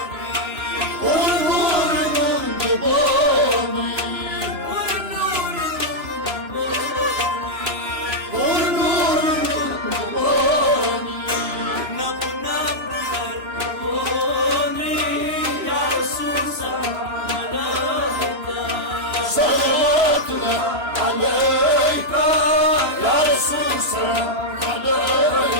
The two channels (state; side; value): late; left; 2.9 ms